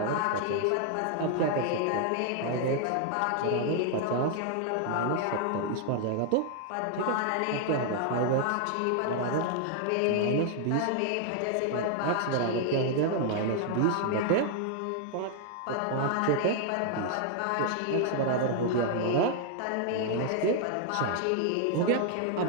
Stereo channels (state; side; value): different; both; correlation 0.00